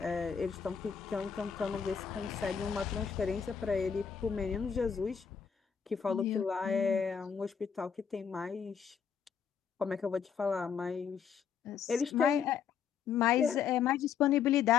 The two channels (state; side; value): quieter; right; 7.1 dB